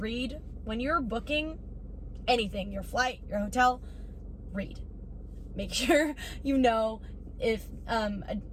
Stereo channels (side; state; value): both; identical; correlation 1.00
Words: when you're booking anything, your flight, your hotel, read. Make sure you know if